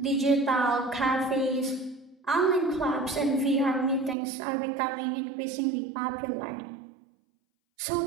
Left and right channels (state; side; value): drops out; left; at 4.2 s